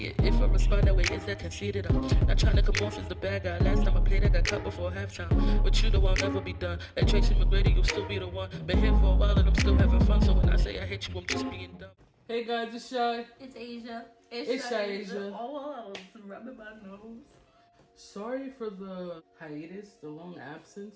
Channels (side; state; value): both; identical; correlation 1.00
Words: it. If I respond that way, is that conceited? I'm not trying to come off as the bad guy. Last time I played, I got cut before halftime. With you, though, I'll never be done. Like Tracy McGrady, you'll still be the one. Been here for a while and I'm still having fun. So when I say I hate you, I'm just being dumb. Hey guys, it's Shy. It's Asia. itsshaiasia. Oh, I'm rubbing my nose. Sorry for the hiatus, the long